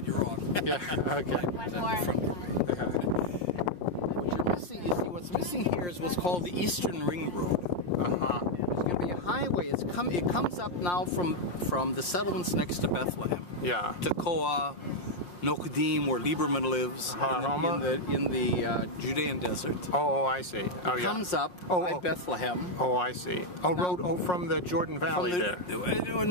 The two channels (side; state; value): right; late; 5.7 ms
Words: you're wrong. Yeah, okay. What you're missing, you see, what's missing here is what's called the Eastern Ring Road. There's going to be a highway. It comes up now from the settlements next to Bethlehem. Yeah. Tekoa, Nokedim, where Lieberman lives, in the Judean desert. Oh, I see. Oh, yeah. It comes up by Bethlehem. Oh, I see. Oh, from the Jordan Valley there.